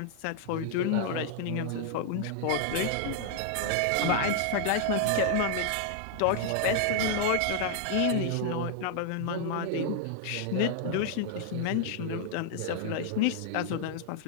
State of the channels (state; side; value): different; both; correlation 0.00